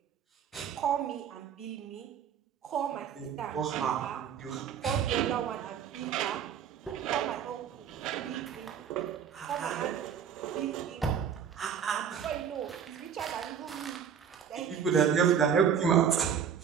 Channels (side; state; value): left; quieter; 8.0 dB